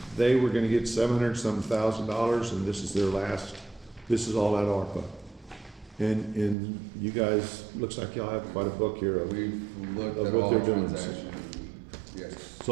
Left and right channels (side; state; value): left; drops out; at 6.6 s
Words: they were gonna get $700,000, and this is their last, this is all at ARPA. And you guys, looks like y'all have quite a book here of, We've looked Of at what all they're the doing. transactions. Yes. It's